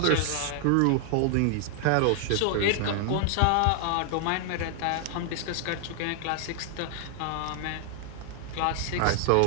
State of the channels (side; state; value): both; different; correlation 0.00